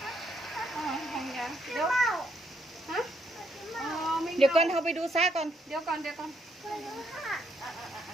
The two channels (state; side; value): normal; both; correlation 0.74